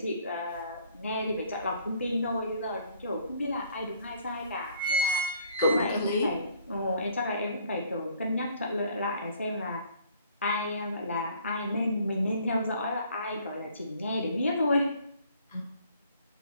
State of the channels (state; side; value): inverted; both; correlation -0.59